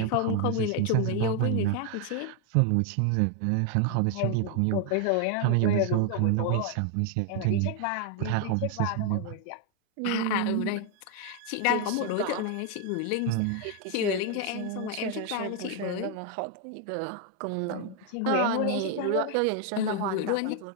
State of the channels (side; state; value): both; different; correlation 0.00